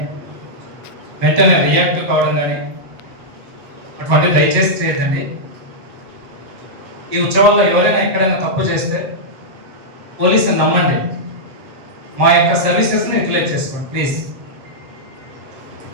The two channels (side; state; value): left; late; 7.5 ms